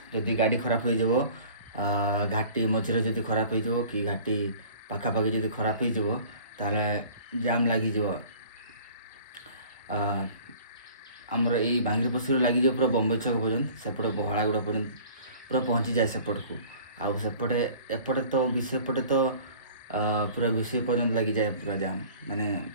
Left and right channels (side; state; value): both; inverted; correlation -0.47